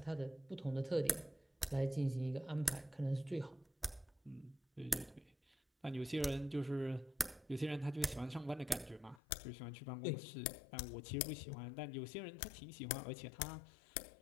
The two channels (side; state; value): right; drops out; at 9.2 s